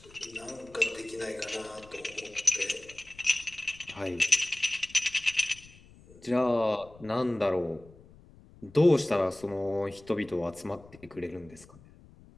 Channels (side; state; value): left; noise; rumble, 23 dB below the sound